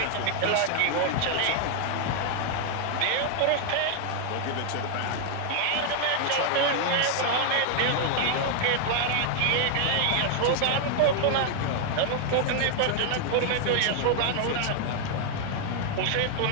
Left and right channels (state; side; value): different; both; correlation 0.00